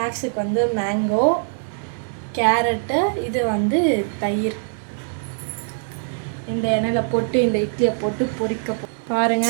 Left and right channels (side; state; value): left; silent; digital silence